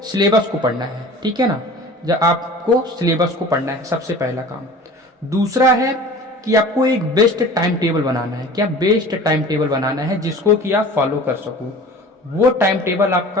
सिलेबस को पढ़ना है, ठीक है ना। जब आपको सिलेबस को पढ़ना है, सबसे पहला काम। दूसरा है कि आपको एक बेस्ट टाइम टेबल बनाना है। क्या? बेस्ट टाइम टेबल बनाना है जिसको कि आप फॉलो कर सको। वो टाइम टेबल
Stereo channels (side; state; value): both; normal; correlation 0.41